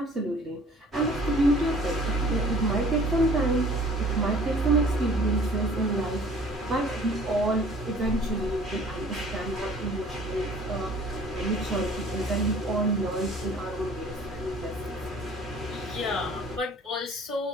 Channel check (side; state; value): both; normal; correlation 0.51